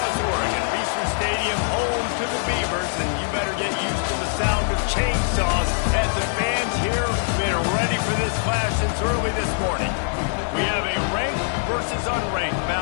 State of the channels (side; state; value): right; silent; digital silence